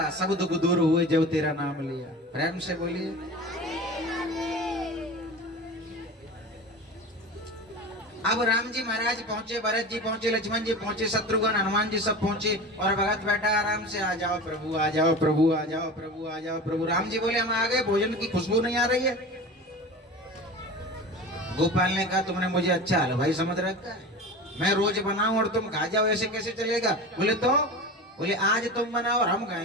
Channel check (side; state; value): both; normal; correlation 0.32